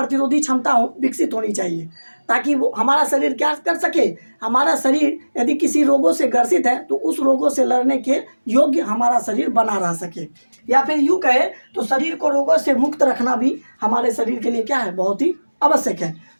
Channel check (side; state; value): both; inverted; correlation -1.00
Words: क्षमता विकसित होनी चाहिए, ताकि वो हमारा शरीर क्या कर सके, हमारा शरीर यदि किसी रोगों से ग्रसित है तो उस रोगों से लड़ने के योग्य हमारा शरीर बना रह सके। या फिर यूँ कहे तो शरीर को रोगों से मुक्त रखना भी हमारे शरीर के लिए क्या है, बहुत ही आवश्यक है।